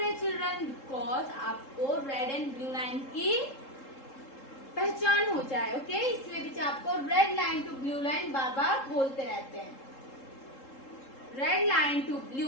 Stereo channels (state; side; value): late; right; 3.7 ms